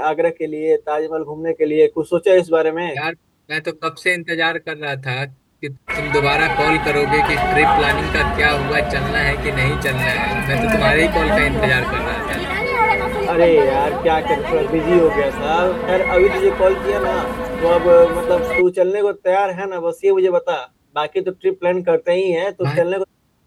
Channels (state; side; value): identical; both; correlation 1.00